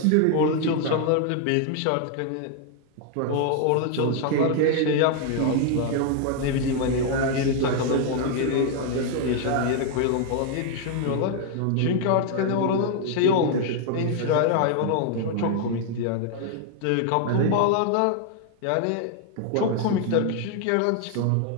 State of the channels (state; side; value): different; both; correlation 0.00